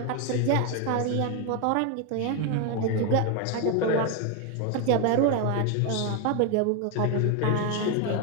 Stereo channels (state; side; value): different; both; correlation 0.01